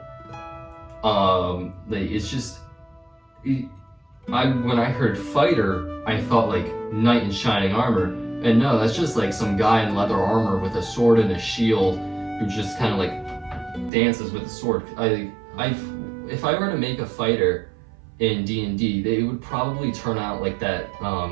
It's just. When I heard fighter, I thought like knight in shining armor, and no, that's just like some guy in leather armor with a sword and a shield who just kind of like dances with a sword. If I were to make a fighter in D&D, they would probably turn out like that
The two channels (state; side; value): drops out; left; at 13.9 s